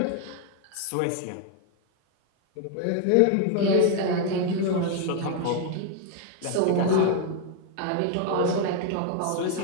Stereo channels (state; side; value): different; both; correlation 0.01